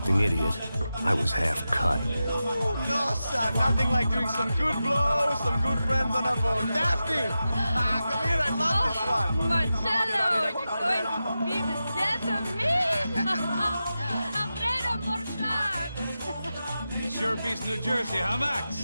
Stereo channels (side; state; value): both; inverted; correlation -0.92